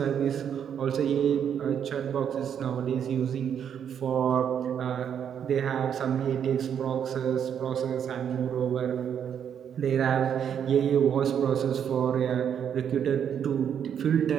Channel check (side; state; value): left; quieter; 8.5 dB